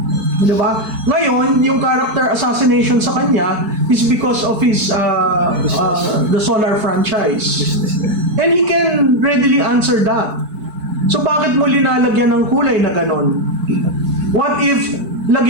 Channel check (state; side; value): late; left; 4.6 ms